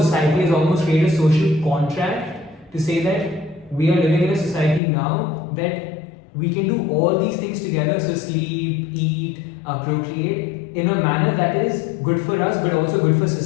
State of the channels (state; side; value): drops out; right; at 4.8 s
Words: has almost created a social contract to say that we are living in a society now that we can do all these things together, so sleep, eat, procreate, in a manner that is good for us but also good for